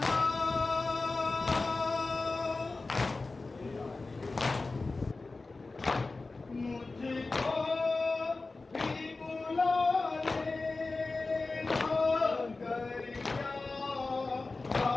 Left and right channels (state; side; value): quieter; right; 3.6 dB